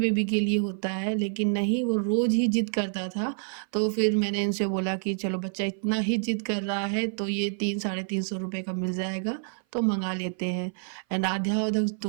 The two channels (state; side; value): silent; left; 56 dB below the other